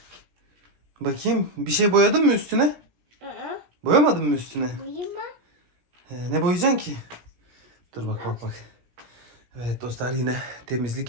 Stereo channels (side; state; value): left; late; 17 ms